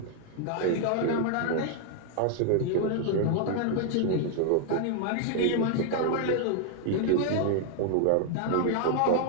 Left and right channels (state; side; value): different; both; correlation 0.00